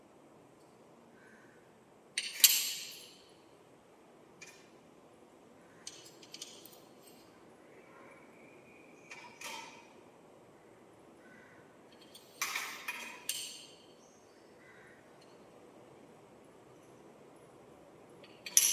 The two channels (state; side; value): identical; both; correlation 1.00